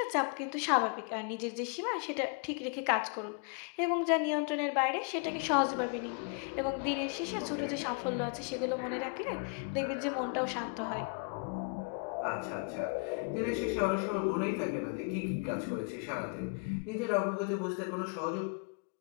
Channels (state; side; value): quieter; right; 37.3 dB